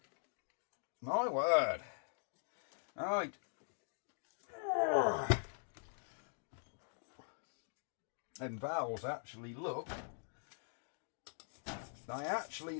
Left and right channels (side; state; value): right; silent; digital silence